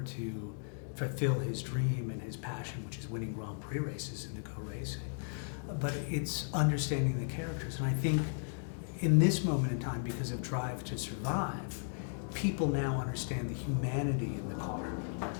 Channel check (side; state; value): right; silent; digital silence